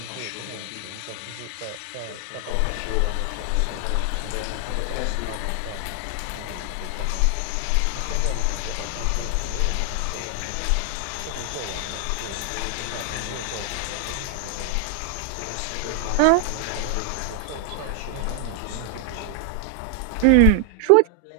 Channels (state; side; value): different; both; correlation 0.00